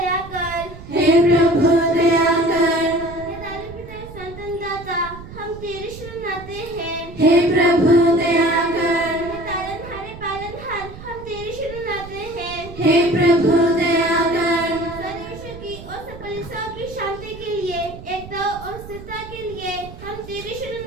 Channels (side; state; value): right; noise; rumble, 15 dB below the sound